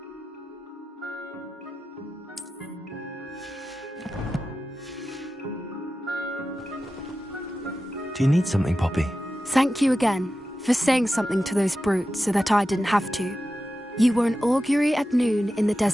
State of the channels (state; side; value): normal; both; correlation 0.92